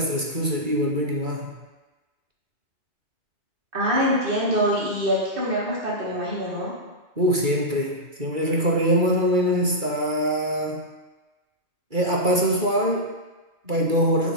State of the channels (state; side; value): late; left; 2.3 ms